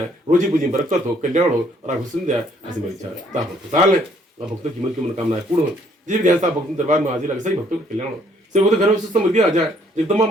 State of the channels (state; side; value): normal; both; correlation 0.64